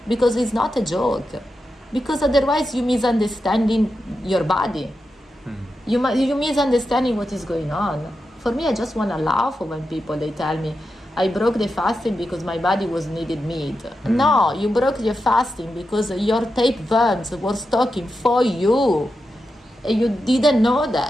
because it's not a joke. Because otherwise you misunderstanding your body. You misunderstanding what is going on. For me, I just want to laugh when people, they tell me, I broke the fasting because my body was needed meat. No, you broke your fasting because your tapeworms were stalking for you. And you didn't know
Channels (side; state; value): both; normal; correlation 0.88